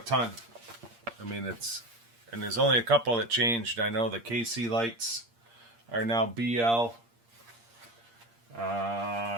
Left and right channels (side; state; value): left; late; 8.6 ms